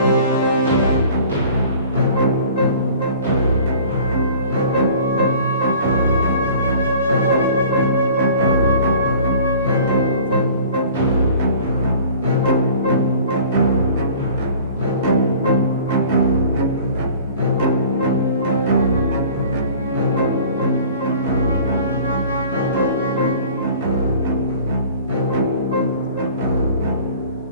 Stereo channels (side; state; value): both; inverted; correlation -0.46